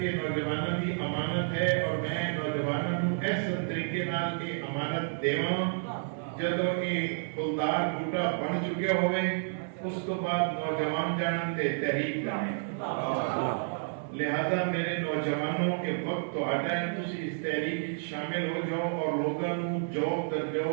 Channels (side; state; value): left; silent; digital silence